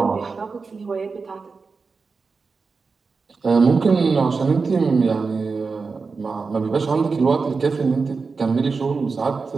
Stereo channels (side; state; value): left; quieter; 4.6 dB